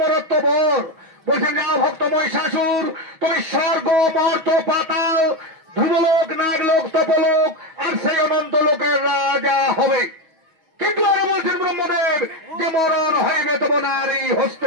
বর। বলছেন যা ভক্ত মহিষাসুর, তুমি স্বর্গ মর্ত পাতাল ধ্রুবলোক নাগলোক তপলোক আর সেই অনন্ত লোকের রাজা হবে। কিন্তু আরো বলছেন ব্রহ্মদেব যে মরণ হইবে তব নারী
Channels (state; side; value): late; left; 6.2 ms